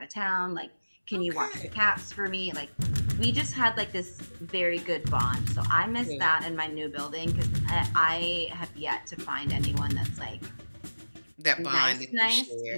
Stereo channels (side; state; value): both; inverted; correlation -1.00